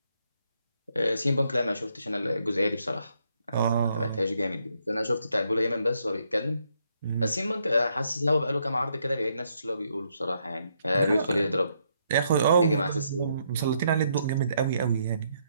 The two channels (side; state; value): both; inverted; correlation -0.75